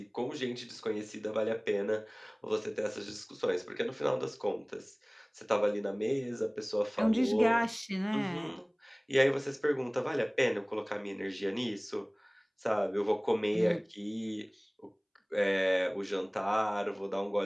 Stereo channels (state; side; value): identical; both; correlation 1.00